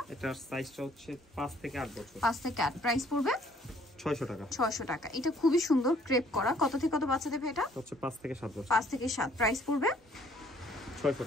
এটার সাইজটা হচ্ছে 5 থেকে 8 বছর। 5 থেকে 8। প্রাইস পড়বে 600 টাকা। 600 টাকা। এটা খুবই সুন্দর ক্রেপ করা। কত থেকে কত বাচ্চাদের ভাই এটা? হচ্ছে 5 থেকে 7 বছর। 5 থেকে 7। প্রাইস পড়বে 600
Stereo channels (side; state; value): both; normal; correlation 0.61